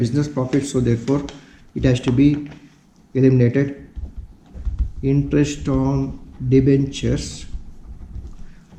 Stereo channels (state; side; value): identical; both; correlation 1.00